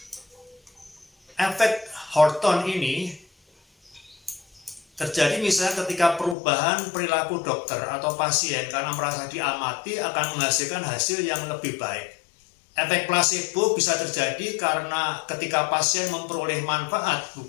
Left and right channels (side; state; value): right; drops out; at 6.4 s